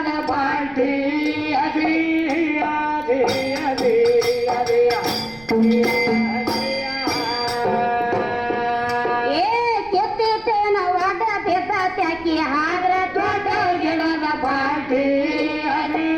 ಬಾಲ್ಟಿ ಅದಿ ಅದಿ ಅದಿ ಅದಿಯ ಕಿತ್ತಿತೇನ ಒಡ ಬಿದ್ದ ತ್ಯಾಕಿ ಆದ್ರ ದೊಡ್ಡ ಗಿಡದ ಬಾಲ್ಟಿ ಅದಿ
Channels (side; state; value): right; noise; rumble, 22 dB below the sound